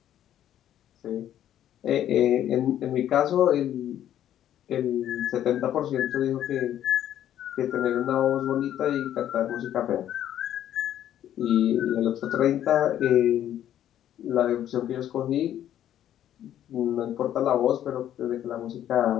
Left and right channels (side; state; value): right; quieter; 11.3 dB